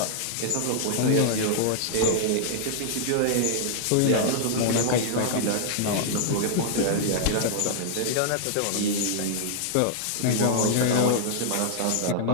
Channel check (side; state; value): both; different; correlation -0.01